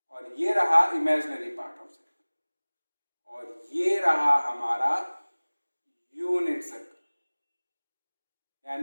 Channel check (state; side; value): inverted; both; correlation -1.00